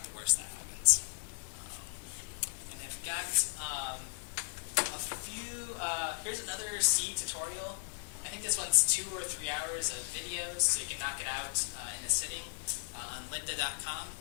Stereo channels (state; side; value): silent; right; digital silence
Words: the worst that happens. And I've got a few, here's another C tutorial. I think this one's 2 or 3 hours of videos, so you can knock it out in a sitting on lynda.com.